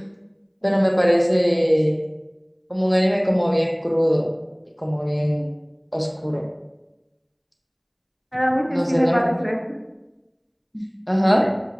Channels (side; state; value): both; identical; correlation 1.00